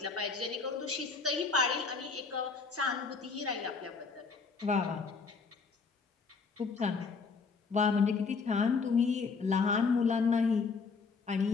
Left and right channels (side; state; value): right; quieter; 4.8 dB